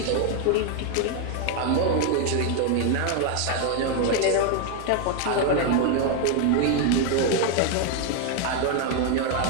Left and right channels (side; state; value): both; different; correlation 0.01